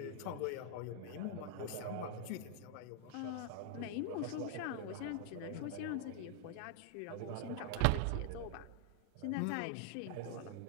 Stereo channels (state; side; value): different; both; correlation 0.00